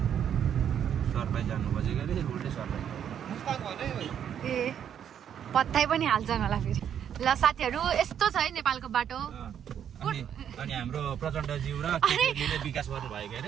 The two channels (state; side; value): quieter; left; 9.1 dB